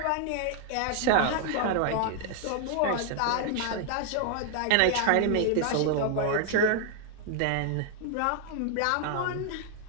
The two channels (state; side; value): different; both; correlation 0.00